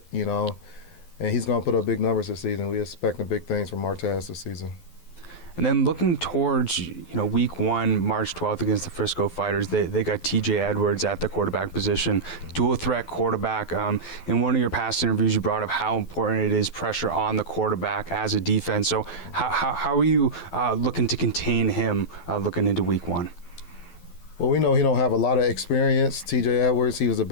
and he's going to put up big numbers this season. We're expecting big things from Martez this season. And then looking towards, week 1, March 12th against the Frisco Fighters, they got TJ Edwards at the quarterback position, dual threat quarterback. In one of your past interviews, you brought up how important it is pressure on the quarterback as a defense. So how are you looking to contain him looking into week 1? Well, we know he don't have a lot of experience. TJ Edwards, he was a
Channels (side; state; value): right; late; 12 ms